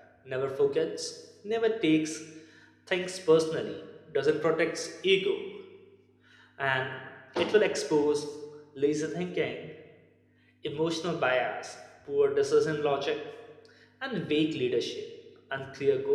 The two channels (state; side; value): identical; both; correlation 1.00